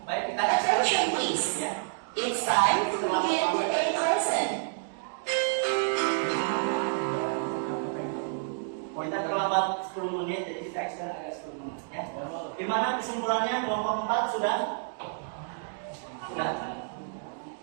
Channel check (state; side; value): silent; left; digital silence